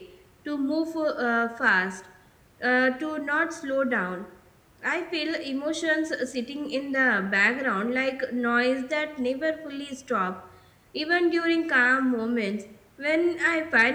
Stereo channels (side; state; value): both; identical; correlation 1.00